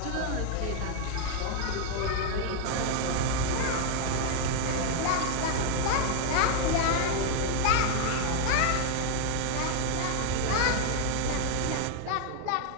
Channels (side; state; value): both; different; correlation 0.00